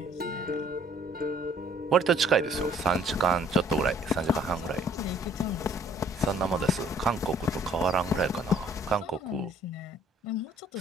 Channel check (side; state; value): both; normal; correlation 0.60